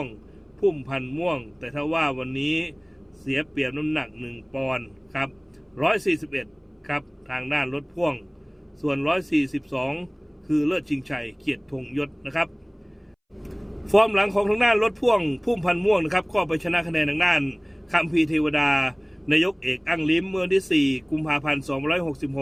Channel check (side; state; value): both; identical; correlation 1.00